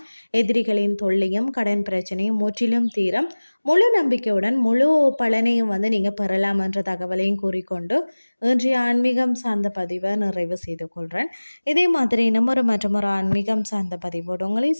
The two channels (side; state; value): both; inverted; correlation -1.00